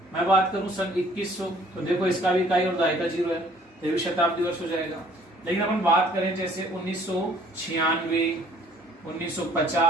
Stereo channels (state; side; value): normal; both; correlation 0.57